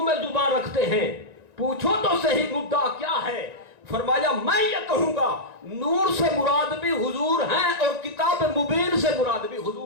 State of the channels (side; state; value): left; late; 1.9 ms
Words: میں زبان رکھتے ہیں، پوچھو تو صحیح مدعا کیا ہے؟ فرمایا میں یہ کہوں گا نور سے مراد بھی حضور ہیں اور کتاب مبین سے مراد بھی